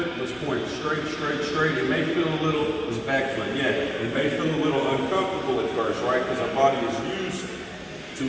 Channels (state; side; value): identical; both; correlation 1.00